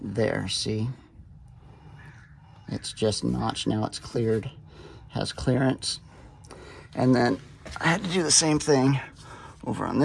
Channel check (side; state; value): both; identical; correlation 1.00